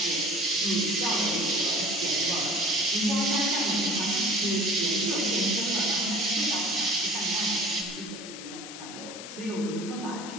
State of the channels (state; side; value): noise; left; hiss, 12 dB below the sound